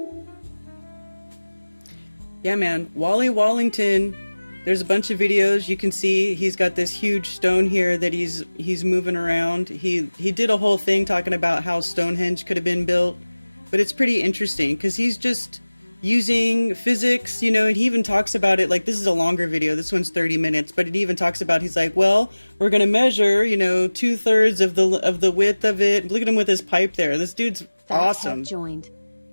Yeah, man. Wally Wallington. There's a bunch of videos you can see. He's got this huge stone here that he's moving around. He did a whole thing talking about how Stonehenge could have been built, but it's pretty interesting because he's just using physics, and he even talks about it. Like, this is a longer video. This one's 30 minutes, but it even talks about, he's like, well, we're gonna measure, 2/3 of the width of it. Look at him with his pipe there. This dude's awesome. Joined.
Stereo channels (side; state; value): both; inverted; correlation -1.00